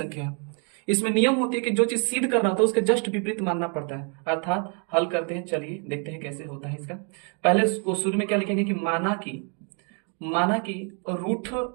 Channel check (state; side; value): quieter; left; 39.6 dB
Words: है। इसमें नियम होती है कि जो चीज सिद्ध करना होता है उसके जस्ट विपरीत मानना पड़ता है, अर्थात हल करते हैं। चलिए देखते हैं कैसे होता है इसका। पहले उसको शुरू में क्या लिखेंगे कि माना कि